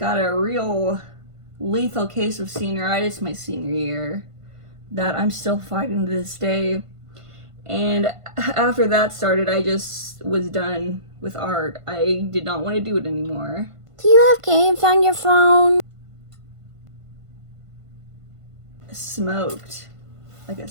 a real lethal case of senioritis my senior year that I'm still fighting to this day. And after that started, I just was done with art. I did not want to do it anymore. Do you have games on your phone? Smoked. Like a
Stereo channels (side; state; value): left; late; 1.5 ms